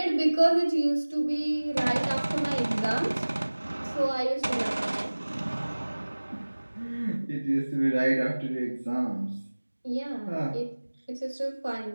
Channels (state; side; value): inverted; both; correlation -1.00